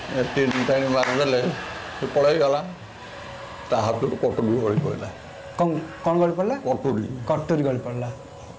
तीन टाणी मारिदे से पलैगला ता हाथ कटुरी गली पड़ा कौन गली पड़ा कटुरी कटुरी गली पड़ा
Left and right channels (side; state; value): both; identical; correlation 1.00